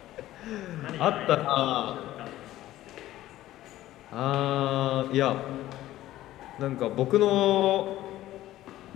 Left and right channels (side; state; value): right; quieter; 14.8 dB